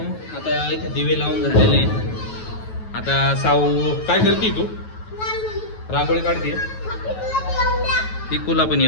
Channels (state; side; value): late; right; 9.3 ms